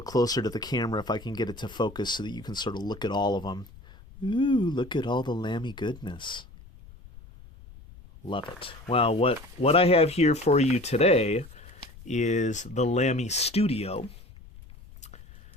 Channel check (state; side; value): noise; left; rumble, 19 dB below the sound